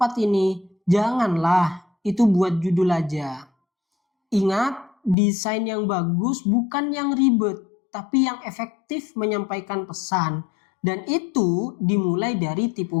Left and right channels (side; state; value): right; drops out; at 5.2 s